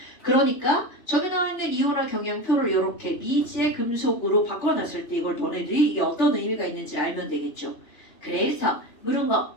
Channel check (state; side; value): late; right; 3.5 ms